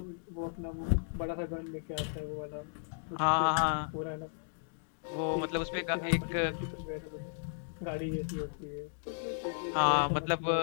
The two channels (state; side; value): silent; right; digital silence